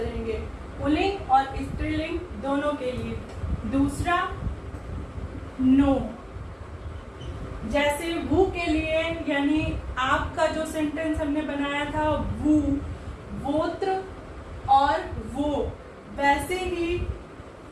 पुल्लिंग और स्त्रीलिंग दोनों के लिए। दूसरा नो, जैसे वू के लिए, यानी आपका जो सेंटेंस हमने बनाया था वू, वोत्र और वो, वैसे ही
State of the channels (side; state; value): both; identical; correlation 1.00